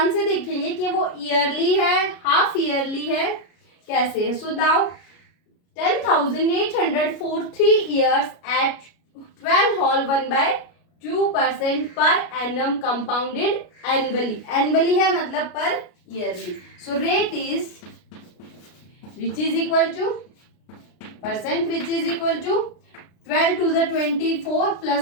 से देखेंगे कि वो ईयरली है, हाफ ईयरली है, कैसे है. So now 10,800 for 3 years at 12 whole 1/2% per annum compounded annually. Annually है मतलब पर yearly. So rate is which is equal to percent which is equal to 12 to the 24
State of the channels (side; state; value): right; late; 33 ms